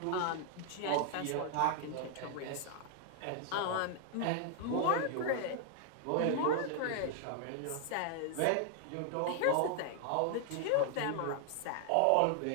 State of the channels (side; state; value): both; different; correlation 0.00